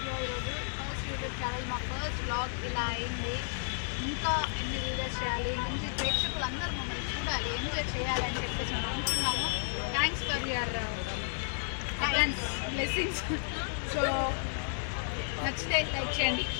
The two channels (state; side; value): silent; right; digital silence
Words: ఈరోజు ఫస్ట్ యూట్యూబ్ ఛానల్, మా ఫస్ట్ వ్లాగ్ ఇలా అయింది. ఇంకా ఎన్ని వీడియోస్ చేయాలి, మంచి ప్రేక్షకులు అందరూ మమ్మల్ని చూడాలి, ఎంజాయ్ చేయాలి అని చెప్పేసి మేము అనుకున్నాము. Thanks for your thanks blessings. So నచ్చితే లైక్ చేయండి,